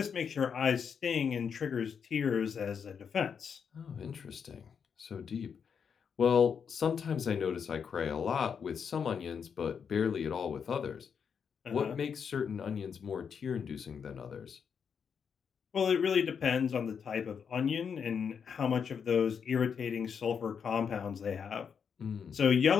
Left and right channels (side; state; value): right; quieter; 6.8 dB